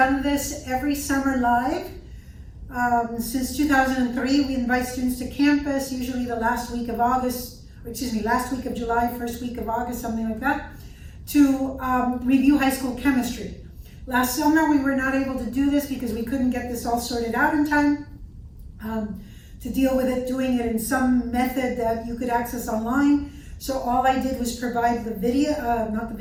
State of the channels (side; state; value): both; identical; correlation 1.00